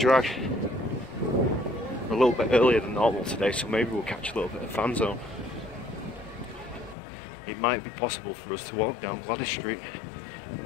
We're a little bit earlier than normal today, so maybe we'll catch a little bit of fan zone. It might be possible for us to walk down Gladys Street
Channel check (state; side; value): drops out; right; at 7.0 s